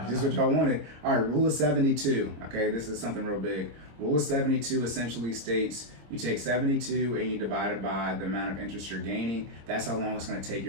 just what y'all wanted. All right, rule of 72. Okay, this is something real big. Rule of 72 essentially states you take 72 and you divide it by the amount of interest you're gaining. That's how long it's going to take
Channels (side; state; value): left; late; 26 ms